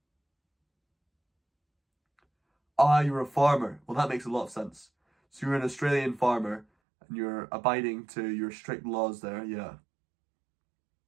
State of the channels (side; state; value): left; drops out; at 6.7 s